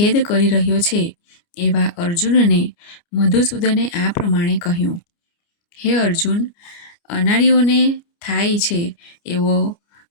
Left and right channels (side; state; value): right; late; 29 ms